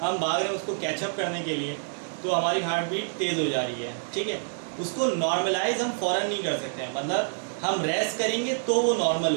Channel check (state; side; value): silent; left; digital silence